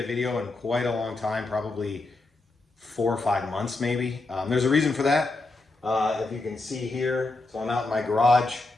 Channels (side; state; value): right; quieter; 3.2 dB